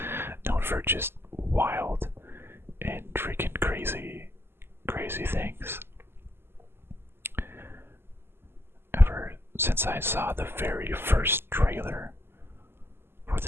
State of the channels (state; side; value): late; left; 0.11 ms